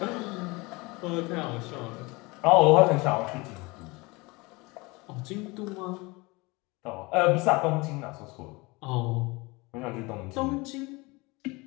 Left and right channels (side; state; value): right; quieter; 24.7 dB